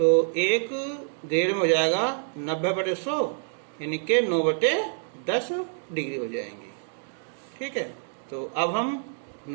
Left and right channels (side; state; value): left; silent; 60 dB below the other